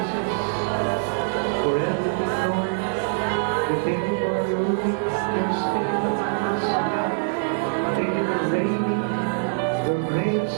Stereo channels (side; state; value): left; silent; digital silence